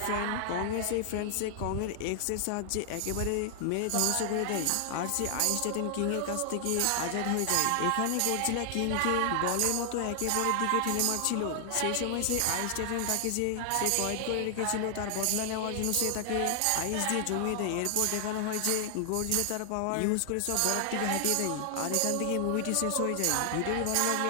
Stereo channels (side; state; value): both; different; correlation 0.00